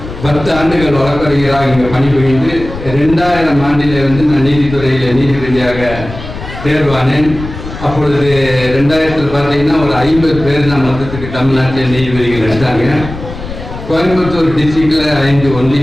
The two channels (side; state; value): left; noise; rumble, 11 dB below the sound